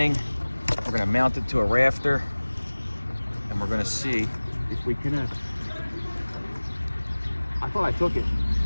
We're gonna mount it to a rafter, and we're gonna see if we can. I thought I took it.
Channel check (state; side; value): inverted; both; correlation -1.00